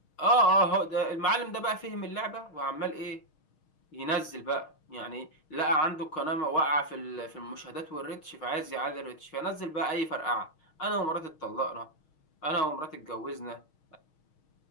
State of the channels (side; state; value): right; late; 6.4 ms